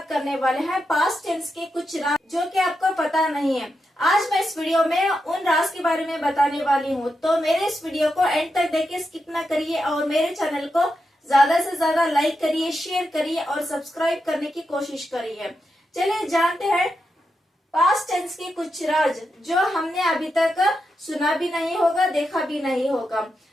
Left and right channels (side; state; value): both; normal; correlation 0.86